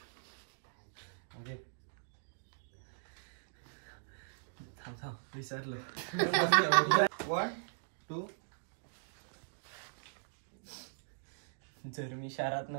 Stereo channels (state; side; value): silent; left; digital silence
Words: विसरलो. 1 2. जर मी शहरात